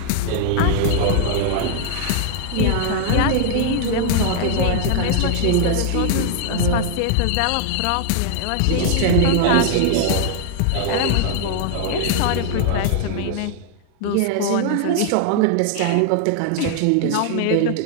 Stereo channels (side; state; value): both; different; correlation 0.00